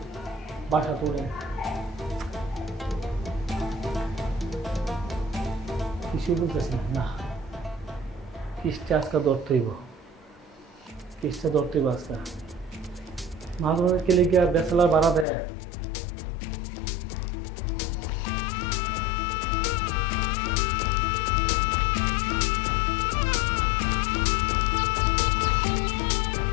বাসা তোড়ে কিছু বলতেছি না। কিসটা আজকে ধরতেইব, কিসটা ধরতেইব আজকে। মাঝে মাঝে কেলে গিয়া বেসালার ভাড়া দেয়।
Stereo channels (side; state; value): right; drops out; at 15.2 s